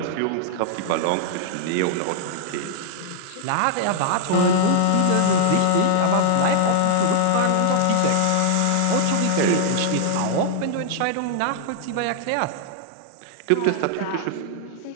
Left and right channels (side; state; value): both; different; correlation 0.00